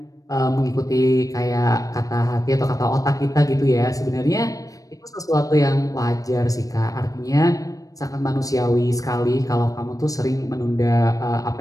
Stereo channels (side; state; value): right; late; 0.17 ms